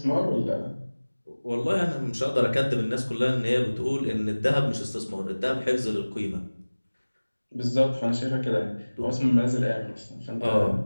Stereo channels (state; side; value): inverted; both; correlation -1.00